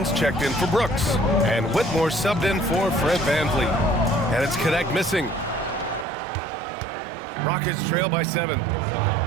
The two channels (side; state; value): left; drops out; at 6.1 s